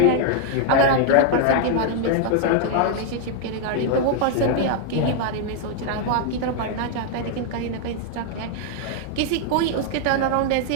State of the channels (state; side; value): different; both; correlation 0.00